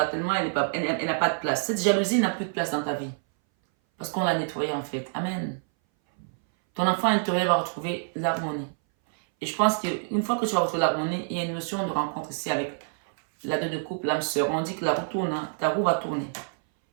Tellement elle n'a pas de place. Cette jalousie n'a plus de place dans ta vie. Parce qu'on l'a nettoyée en fait. Amen. Ton enfant intérieur va retrouver l'harmonie. Et je pense qu'une fois que tu vas retrouver l'harmonie, il y a une notion de rencontre ici avec la deux de couple, l'âme sœur. On dit que la roue tourne, hein, ta roue va tourner.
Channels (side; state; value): left; silent; 59 dB below the other